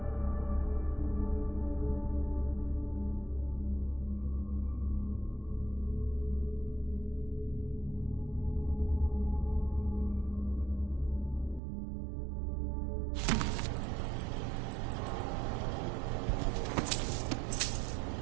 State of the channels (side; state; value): left; drops out; at 11.6 s